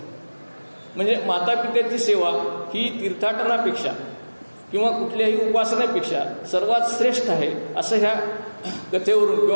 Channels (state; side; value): inverted; both; correlation -1.00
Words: म्हणजे मातापित्याची सेवा ही तीर्थाटनापेक्षा किंवा कुठल्याही उपासनेपेक्षा सर्वात श्रेष्ठ आहे असं ह्या कथेवरून